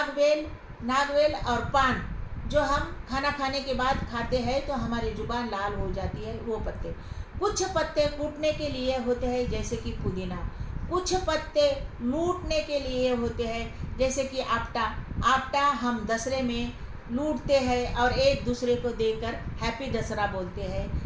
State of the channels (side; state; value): both; identical; correlation 1.00